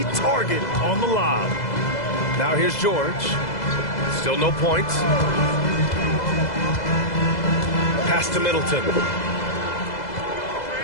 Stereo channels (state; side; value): late; right; 2.0 ms